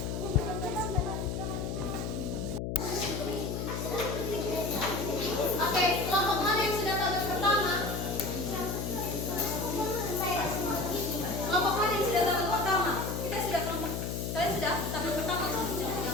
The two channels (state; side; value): noise; left; hum, 3 dB below the sound